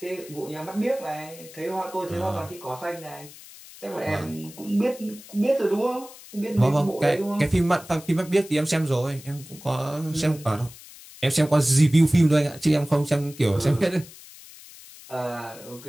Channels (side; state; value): left; noise; hiss, 19 dB below the sound